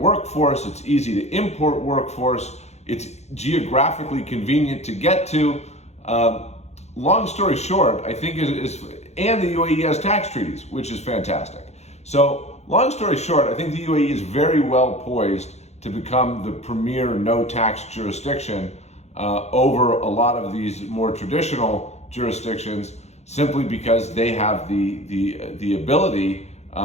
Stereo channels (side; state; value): right; late; 0.32 ms